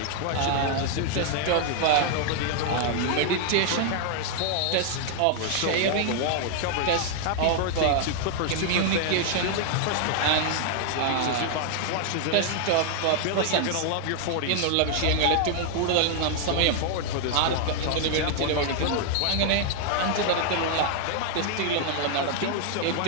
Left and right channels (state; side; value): different; both; correlation 0.00